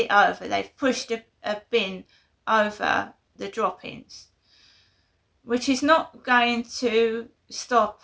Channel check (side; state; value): both; identical; correlation 1.00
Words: over. They've pushed a bin over the droppings, which is not going to stop